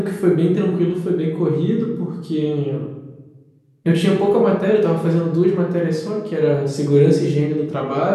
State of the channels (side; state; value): both; identical; correlation 1.00